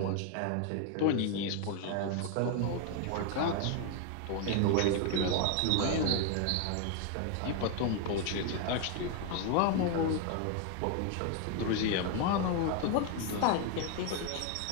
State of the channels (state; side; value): different; both; correlation 0.01